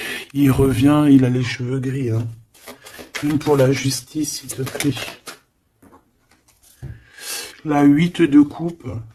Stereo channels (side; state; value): both; identical; correlation 1.00